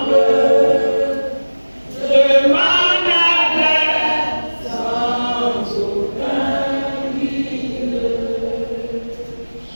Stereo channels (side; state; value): both; inverted; correlation -1.00